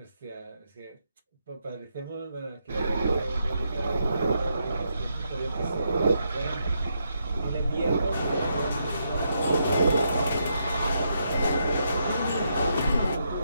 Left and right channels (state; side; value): inverted; both; correlation -0.80